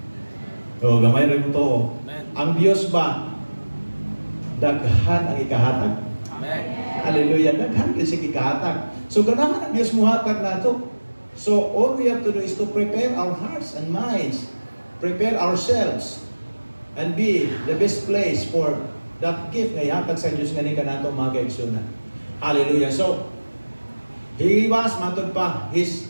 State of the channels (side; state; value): both; inverted; correlation -1.00